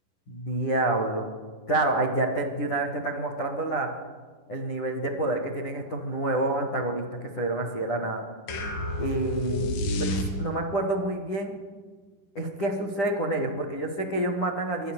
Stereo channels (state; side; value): late; right; 10 ms